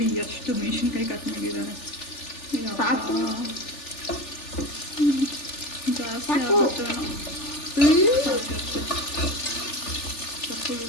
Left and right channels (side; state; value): right; late; 3.4 ms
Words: ಎಷ್ಟು ಮೆಣಸಿನ್ಕಾಯಿ ಕಟ್ ಮಾಡಿದ್ದಾರೆ. ಸಾಕು